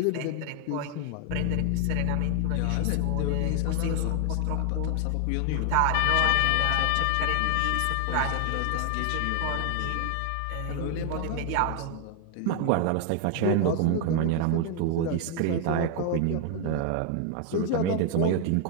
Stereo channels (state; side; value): different; both; correlation 0.00